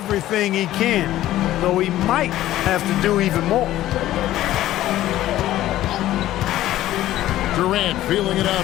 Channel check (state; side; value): quieter; right; 14.2 dB